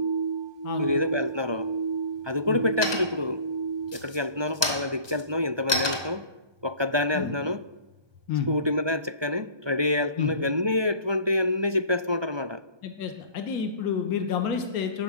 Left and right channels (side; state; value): left; late; 1.2 ms